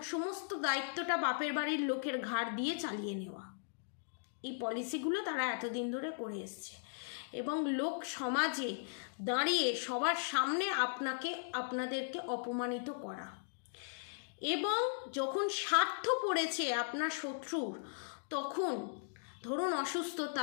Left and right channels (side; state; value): right; silent; digital silence